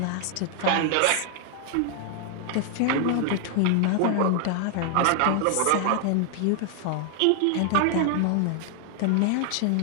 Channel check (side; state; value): both; different; correlation 0.00